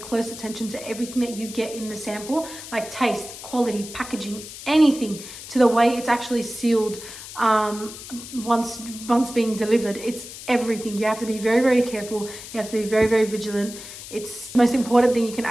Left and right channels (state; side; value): noise; left; hiss, 13 dB below the sound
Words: attention to everything that you get in the sample, like taste, quality, packaging, anything, to the way it's actually sealed once being delivered. It's everything. You have to be very, very careful. You have to be very, very vigilant. It's the most important thing you can